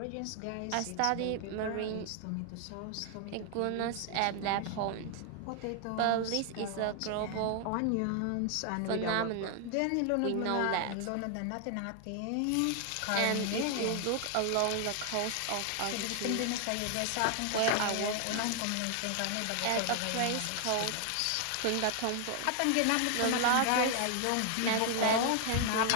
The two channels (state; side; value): different; both; correlation 0.00